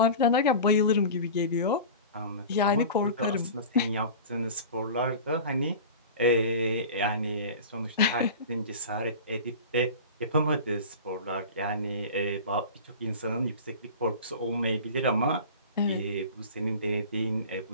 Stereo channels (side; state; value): both; inverted; correlation -0.34